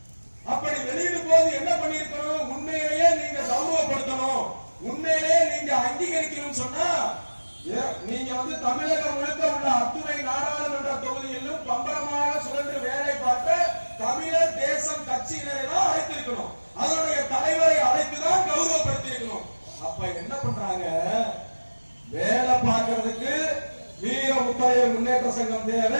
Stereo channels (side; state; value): both; inverted; correlation -1.00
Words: அப்படி வெளியிடும் போது என்ன பண்ணிருக்கணும்? உண்மையிலேயே நீங்க கௌரவப்படுத்தணும், உண்மையிலேயே நீங்க அங்கீகரிக்கணும். சொன்னா நீங்க தமிழகம் முழுக்க உள்ள அத்துணை நாடாளுமன்ற தொகுதியிலும் பம்பரமாக சுழன்று வேலை பார்த்த தமிழர் தேசம் கட்சியினரை தான் அழைத்திருக்கணும், அதனுடைய தலைவரை அழைத்துதான் கௌரவப்படுத்தியிருக்கணும். அப்ப என்ன பண்றாங்க? வேலை பார்க்கறதுக்கு வீர முத்தரையர் முன்னேற்ற சங்கம் தேவை,